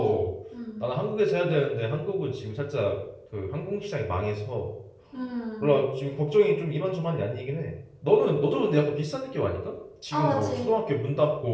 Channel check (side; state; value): both; identical; correlation 1.00